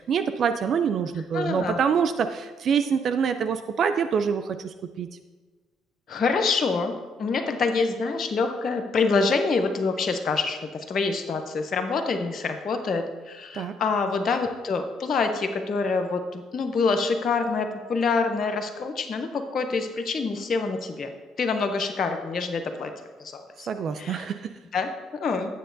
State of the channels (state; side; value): normal; both; correlation 0.69